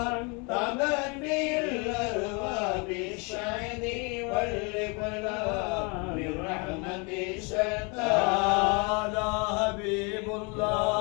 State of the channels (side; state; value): right; quieter; 31.7 dB